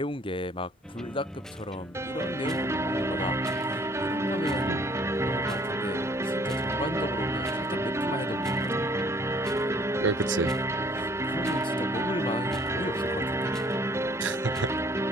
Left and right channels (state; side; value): normal; both; correlation 0.58